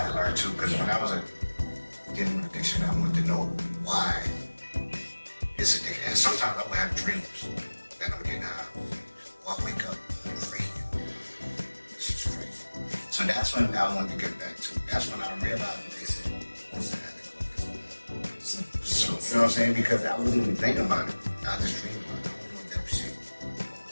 to learn too, because when I was dealing with addiction, I wanted to know why it's addiction. And sometimes I would have dreams that I'm getting high, or I wake up craving. This is crazy. So that's when I wanted to get back to. That's when I realized what they said. What's that? So, you know what I'm saying? Because I wasn't even thinking about it. I just dreamed about it. I don't know if that was shit.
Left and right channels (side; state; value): both; inverted; correlation -1.00